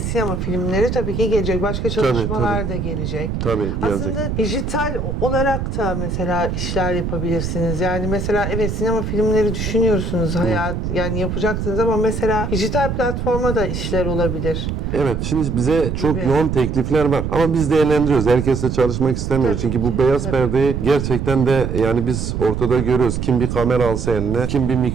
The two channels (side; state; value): right; noise; rumble, 3 dB below the sound